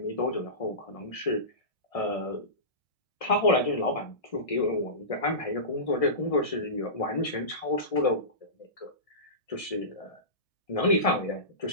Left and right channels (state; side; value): late; right; 1.6 ms